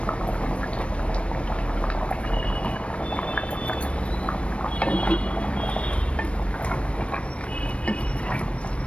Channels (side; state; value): right; late; 0.061 ms